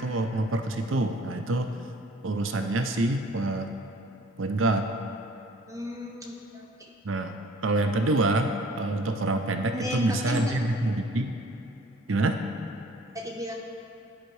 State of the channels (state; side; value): normal; both; correlation 0.54